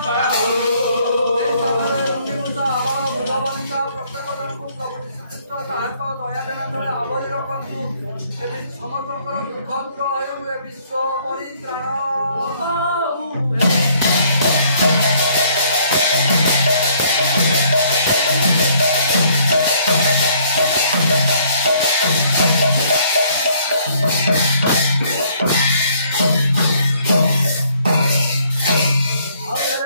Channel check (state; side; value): inverted; both; correlation -0.63